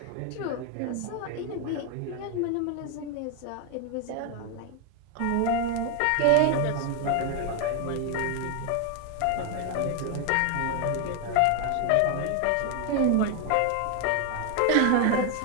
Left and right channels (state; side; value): different; both; correlation 0.01